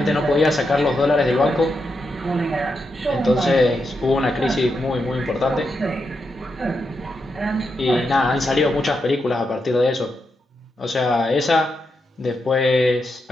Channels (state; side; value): normal; both; correlation 0.84